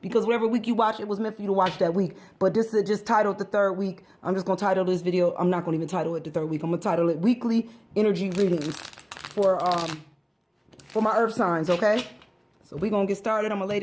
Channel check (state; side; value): identical; both; correlation 1.00